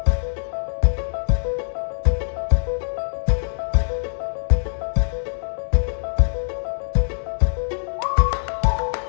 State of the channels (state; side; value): silent; right; digital silence